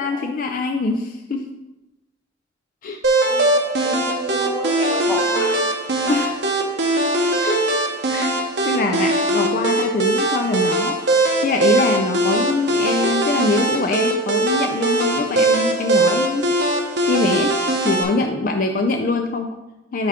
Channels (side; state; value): both; normal; correlation 0.26